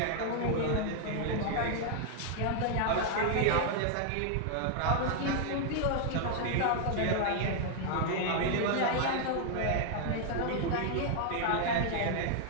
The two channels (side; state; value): both; different; correlation 0.00